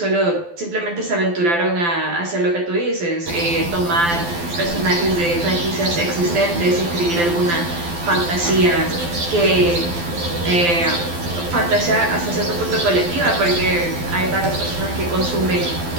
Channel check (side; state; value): left; late; 12 ms